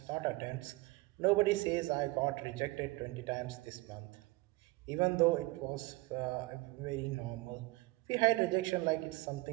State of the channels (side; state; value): left; quieter; 22.1 dB